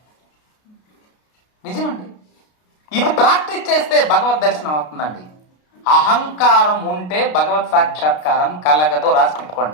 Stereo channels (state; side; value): late; right; 33 ms